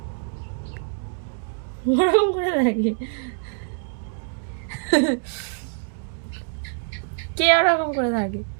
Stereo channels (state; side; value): silent; left; 62 dB below the other